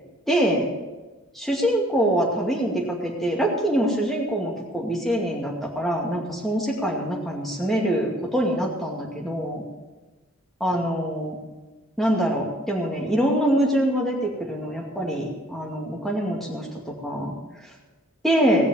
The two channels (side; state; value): both; normal; correlation 0.59